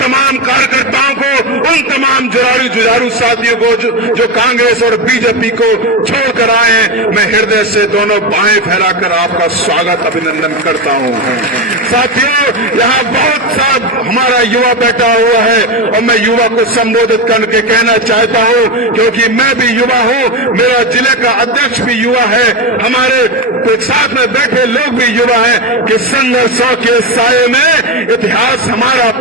कार्यकर्ताओं को, उन तमाम जुझारू साथियों को जो कांग्रेस और बीजेपी को छोड़कर आए हैं, मैं हृदय से दोनों बाहें फैलाकर आपका स्वागत अभिनंदन करता हूं। साथियों, यहाँ बहुत सा हमारा युवा बैठा हुआ है और मैं युवा को संबोधित करके कहना चाहता हूँ, क्योंकि मैं भी युवा हूँ, मेरा जिले का अध्यक्ष भी युवा है, हमारे साथ में बैठे लोग भी युवा हैं, कि संघर्षों के साये में इतिहास हमारा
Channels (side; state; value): both; normal; correlation 0.14